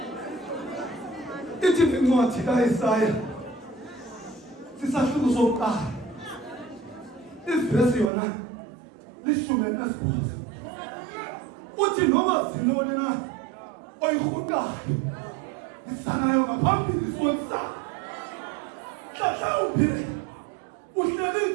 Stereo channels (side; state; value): left; drops out; at 8.1 s